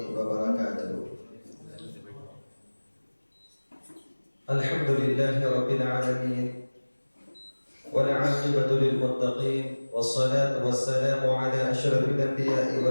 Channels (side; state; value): both; inverted; correlation -1.00